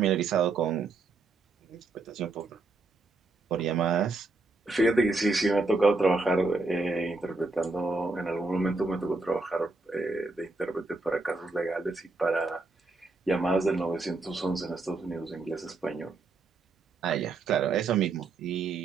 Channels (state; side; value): quieter; left; 3.5 dB